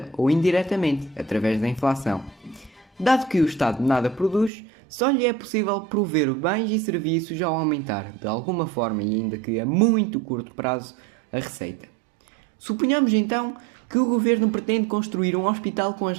ou indiretamente, através da inflação. Dado que o Estado nada produz, só lhe é possível prover bens e serviços ao aumentar, de alguma forma e ainda que a muito curto prazo, a receita. Suponhamos então que o governo pretende construir um hospital com as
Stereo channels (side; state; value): left; drops out; at 4.5 s